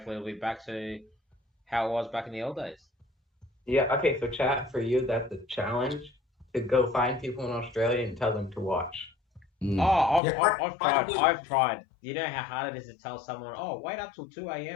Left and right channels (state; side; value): drops out; right; at 10.2 s